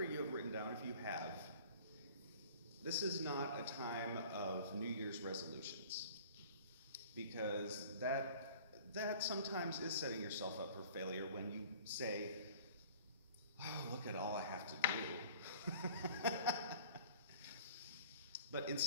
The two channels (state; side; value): inverted; both; correlation -0.46